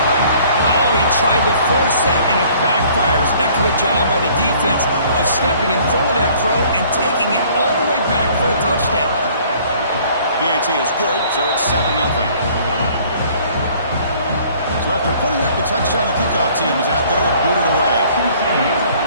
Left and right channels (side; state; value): both; inverted; correlation -0.56